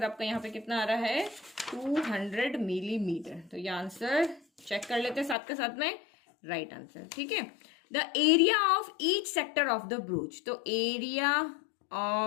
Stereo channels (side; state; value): right; drops out; at 5.4 s